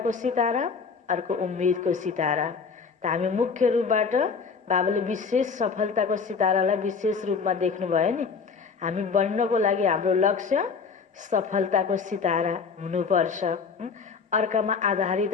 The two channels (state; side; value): quieter; right; 5.4 dB